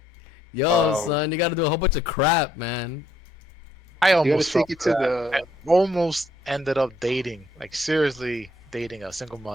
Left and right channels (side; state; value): both; normal; correlation 0.69